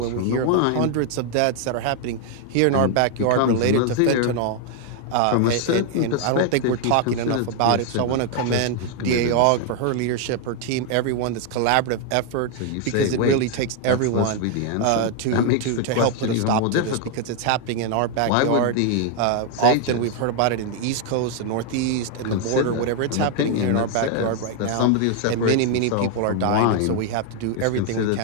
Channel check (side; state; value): both; different; correlation 0.00